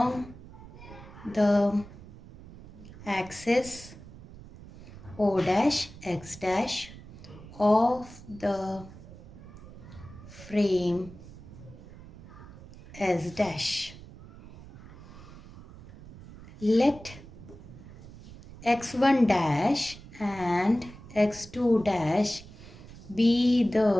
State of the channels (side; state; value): right; noise; rumble, 17 dB below the sound